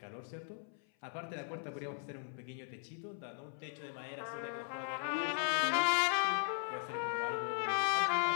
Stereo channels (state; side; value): silent; right; 52 dB below the other